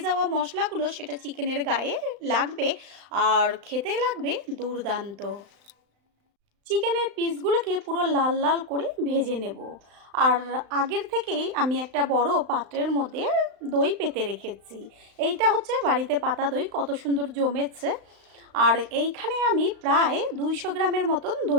যাওয়া মশলাগুলো সেটা চিকেনের গায়ে লাগবে আর খেতে লাগবে দুর্দান্ত। চিকেনের পিসগুলোকে পুরো লাল লাল করে ভেজে নেব। আর আগের থেকেই আমি একটা বড় পাত্রের মধ্যে দই পেতে রেখেছি। এইটা হচ্ছে বাড়িতে পাতা দই, কত সুন্দর জমেছে। আর এইখানে আমি প্রায় 200 গ্রামের মতন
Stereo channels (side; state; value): left; late; 35 ms